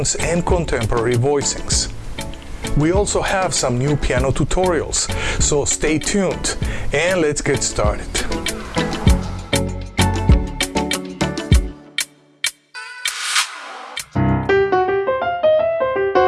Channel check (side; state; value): both; identical; correlation 1.00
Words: and contemporary voicings. We also have some new piano tutorials, so stay tuned and let's get started.